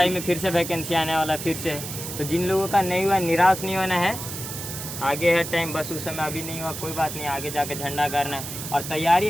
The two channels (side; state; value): right; noise; hiss, 8 dB below the sound